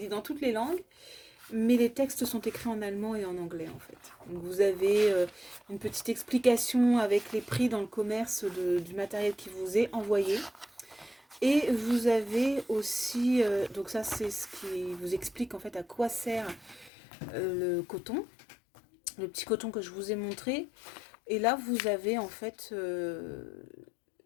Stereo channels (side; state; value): right; drops out; at 16.9 s